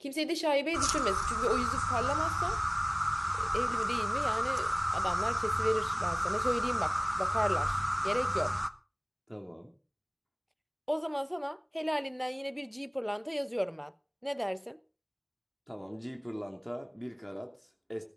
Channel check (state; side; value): identical; both; correlation 1.00